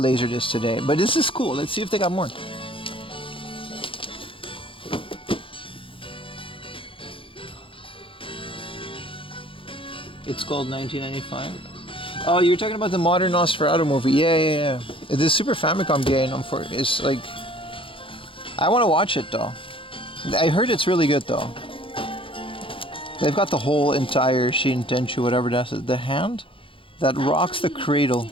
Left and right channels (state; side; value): late; right; 0.25 ms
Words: today, but this is cool. Let's see if they got more. It's called 1995. Oh, you're talking about the modern Nosferatu movie. Yeah. The Super Famicom game is like... I want to watch it though. I heard it's really good though. They've got the whole entire Shin Tenchu, whatever that's the hand that rocks the cradle.